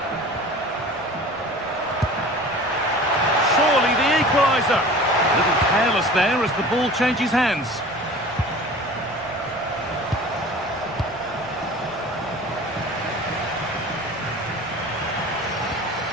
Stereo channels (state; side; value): noise; left; rumble, 25 dB below the sound